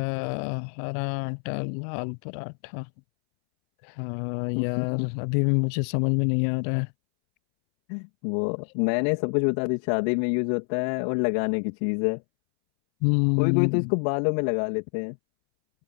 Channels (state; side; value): silent; right; 61 dB below the other